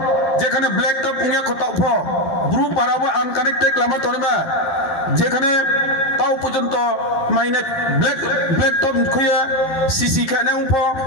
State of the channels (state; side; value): late; right; 12 ms